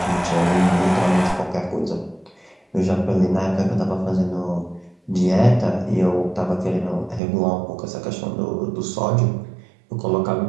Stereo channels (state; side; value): drops out; left; at 7.2 s